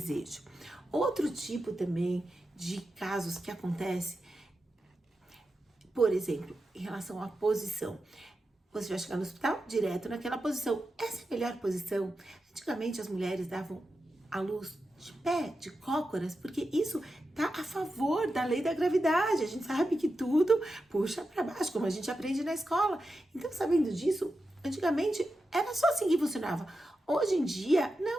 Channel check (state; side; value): normal; both; correlation 0.90